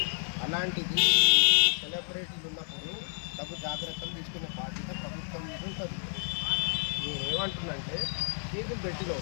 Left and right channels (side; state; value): right; silent; digital silence